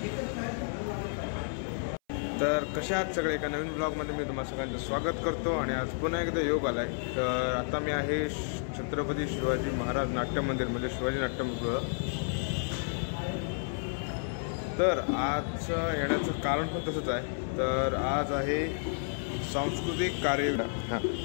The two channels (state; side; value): silent; right; 57 dB below the other